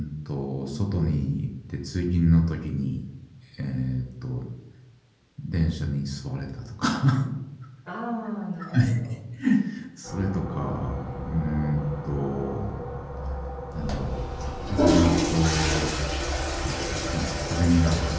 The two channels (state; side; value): identical; both; correlation 1.00